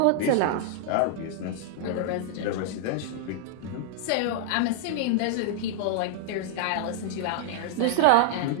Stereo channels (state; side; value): different; both; correlation -0.01